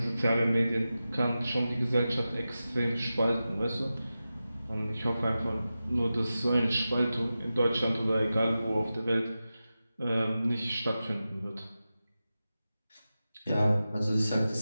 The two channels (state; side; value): inverted; both; correlation -0.94